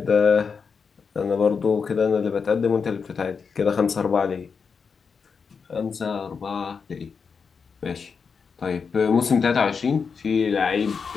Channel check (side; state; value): right; quieter; 5.7 dB